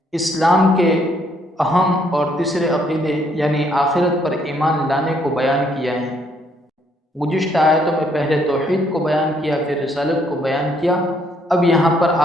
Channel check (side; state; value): both; normal; correlation 0.69